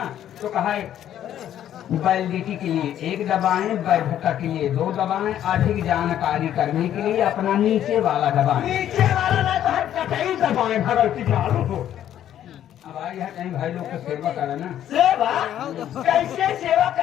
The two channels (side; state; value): right; quieter; 11.0 dB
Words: तो कहा वैलिडिटी के लिए 1 दबाएं, वैधता के लिए 2 दबाएं, अधिक जानकारी करने के लिए अपना नीचे वाला दबाएं। नीचे वाला दबाएं भगवती चालू हो। अब आई है कहीं भाई लोग को सेवा करा ना। सेवा कैसे सेवा